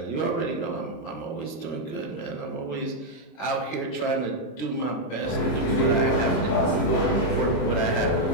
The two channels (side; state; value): right; late; 26 ms